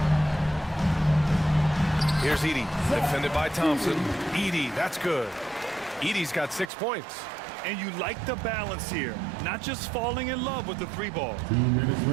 Here's Edey, defended by Thompson. Edey, that's good. Edey's got 6 points. And you like the balance here, not just falling in love with the 3-ball. 2 minutes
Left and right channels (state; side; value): drops out; left; at 6.7 s